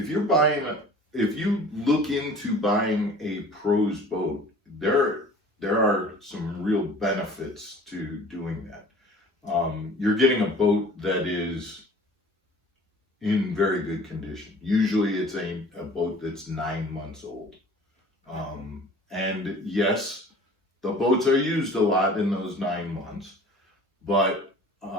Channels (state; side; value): normal; both; correlation 0.47